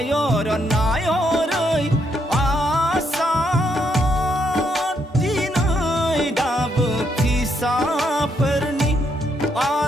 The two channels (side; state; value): both; normal; correlation 0.75